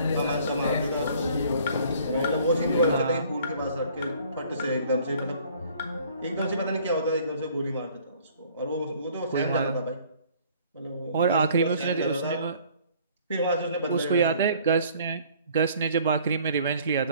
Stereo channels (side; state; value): both; inverted; correlation -0.56